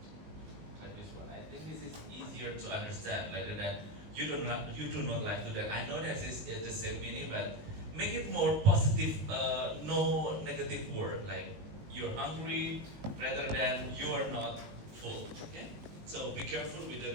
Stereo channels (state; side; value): late; left; 19 ms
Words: Like this one. I think this is easier to understand rather than you do not like to dance. I know that is the same meaning, but make it more positive, no negative word like you're hungry rather than you are not full. Okay? So be careful with the